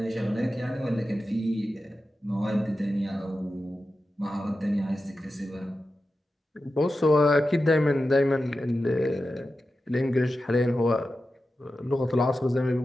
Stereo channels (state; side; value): normal; both; correlation 0.92